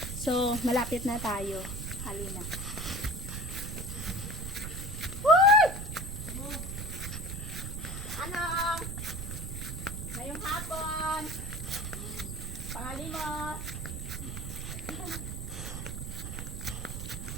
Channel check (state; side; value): noise; right; rumble, 5 dB below the sound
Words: So, malapit na tayo. Halina. Anong? Ngayong hapon. Pangalimos.